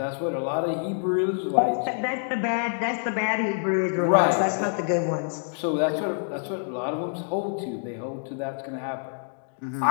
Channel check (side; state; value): right; silent; digital silence